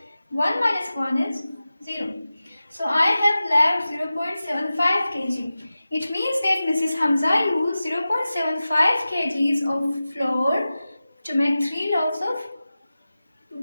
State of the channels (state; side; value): inverted; both; correlation -0.95